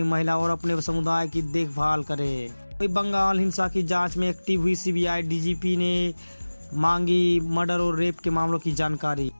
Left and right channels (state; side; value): inverted; both; correlation -1.00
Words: महिला और अपने समुदाय की देखभाल करे। बंगाल हिंसा की जांच में एक्टिव हुई CBI DGP ने मांगी मर्डर और रेप के मामलों की जानकारी।